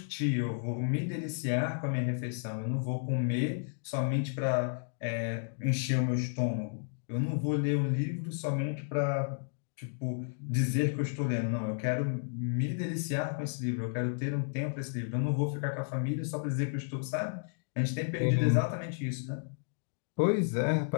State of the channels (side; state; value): right; silent; digital silence